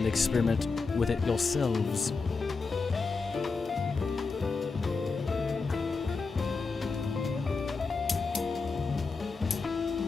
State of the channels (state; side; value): quieter; right; 4.4 dB